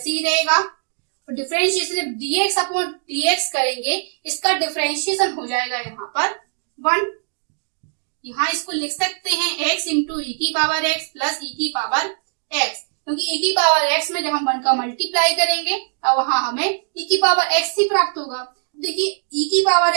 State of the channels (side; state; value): left; silent; digital silence